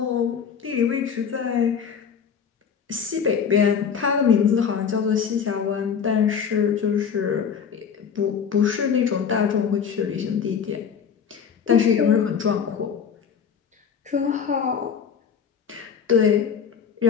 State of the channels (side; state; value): right; quieter; 7.0 dB